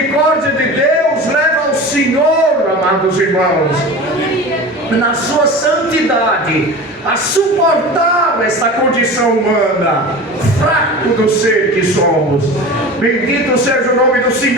de Deus leva ao Senhor, amados irmãos, na sua santidade, a suportar essa condição humana, fraco do ser que somos. Bendito seja o nome do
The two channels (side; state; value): both; normal; correlation 0.33